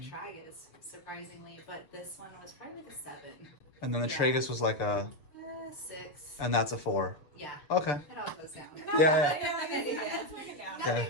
tragus, surprisingly. But this one was probably like a 7. And then the Yeah. tragus was like a, 6. and that's a 4. Yeah. Okay. It all goes down. Yeah. Let's break it down.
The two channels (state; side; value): late; right; 7.2 ms